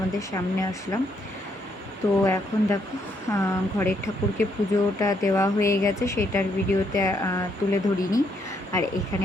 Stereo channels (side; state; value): both; normal; correlation 0.74